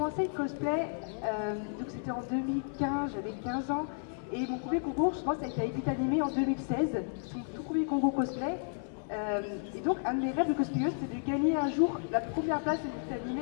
le cosplay, donc c'était en 2015, j'avais 15 ans. Et mon premier concours, je pense, ça a été à Epitanim en 2016. C'est mon tout premier concours cosplay. Et donc, un de mes rêves de cosplayeuse, c'était de gagner un jour la première place à Epitanim.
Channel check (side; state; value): right; silent; 56 dB below the other